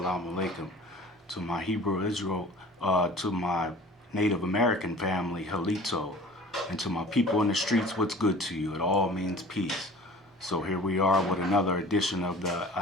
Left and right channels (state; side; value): normal; both; correlation 0.44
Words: alaikum. To my Hebrew Israel, to my Native American family, Halito, and to my people in the streets, what's good to you? It all means peace. So here we are with another edition of the